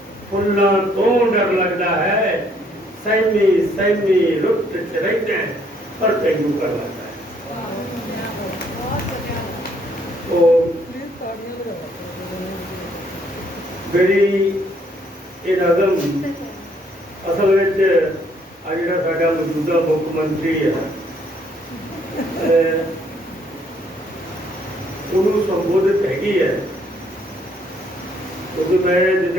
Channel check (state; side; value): normal; both; correlation 0.66